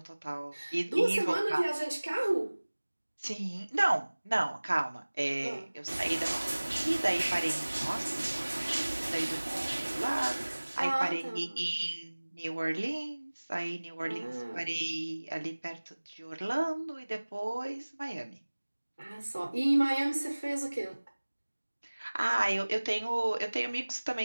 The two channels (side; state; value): both; inverted; correlation -1.00